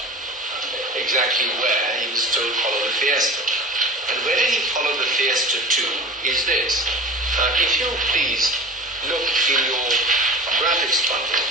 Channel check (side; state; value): both; normal; correlation 0.37